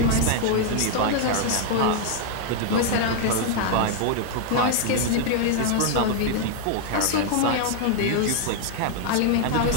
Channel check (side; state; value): both; different; correlation 0.00